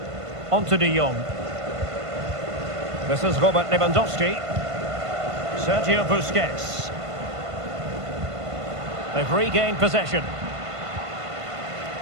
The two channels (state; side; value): late; left; 1.5 ms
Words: On to De Jong. This is Robert Lewandowski. Sergio Busquets. They've regained possession.